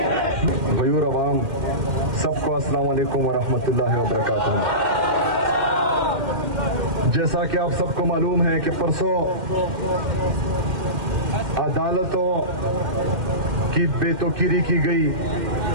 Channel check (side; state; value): left; late; 2.1 ms